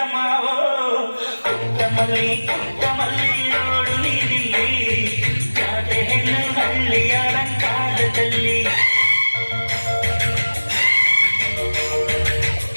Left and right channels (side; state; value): both; inverted; correlation -1.00